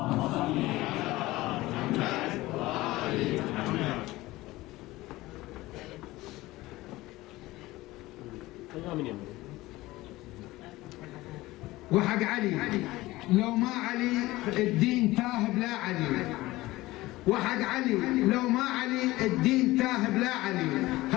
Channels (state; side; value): quieter; right; 18.6 dB